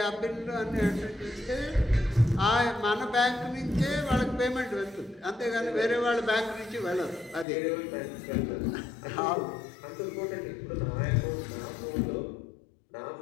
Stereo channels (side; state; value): right; drops out; at 7.5 s